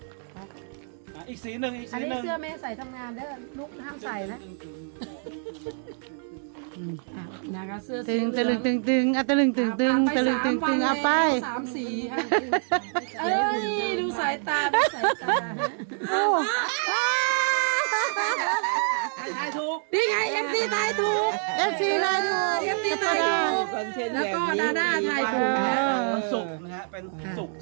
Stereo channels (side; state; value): left; silent; 61 dB below the other